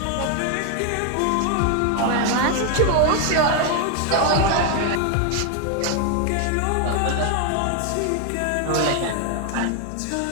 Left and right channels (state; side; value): different; both; correlation 0.01